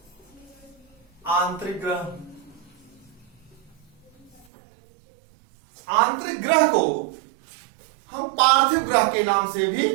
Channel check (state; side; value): drops out; left; at 4.5 s